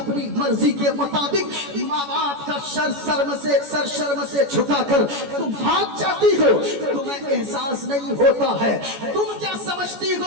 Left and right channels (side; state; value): left; late; 14 ms